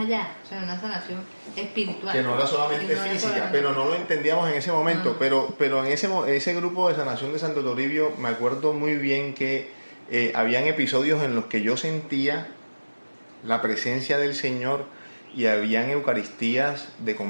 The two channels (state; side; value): inverted; both; correlation -1.00